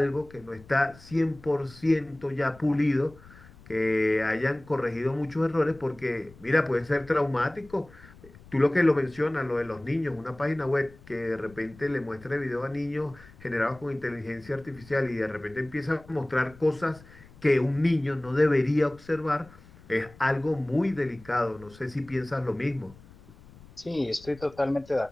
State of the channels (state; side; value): noise; left; rumble, 23 dB below the sound